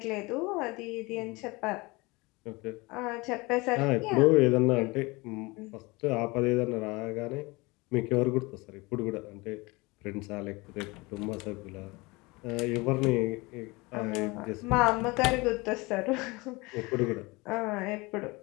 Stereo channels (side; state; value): right; quieter; 24.4 dB